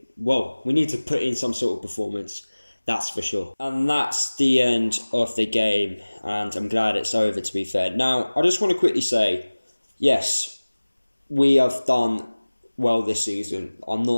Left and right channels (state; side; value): inverted; both; correlation -1.00